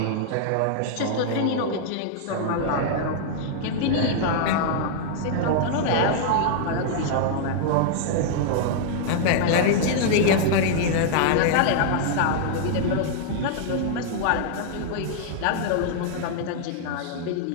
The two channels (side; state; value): both; different; correlation -0.01